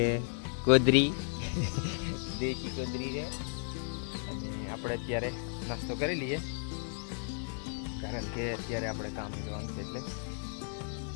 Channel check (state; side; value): silent; right; 55 dB below the other